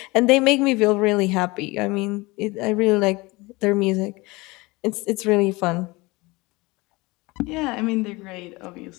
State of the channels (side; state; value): right; quieter; 23.3 dB